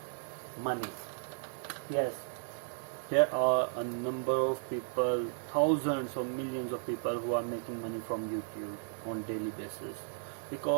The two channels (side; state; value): left; silent; digital silence